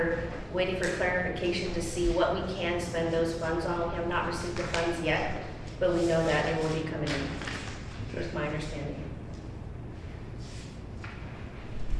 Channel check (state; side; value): identical; both; correlation 1.00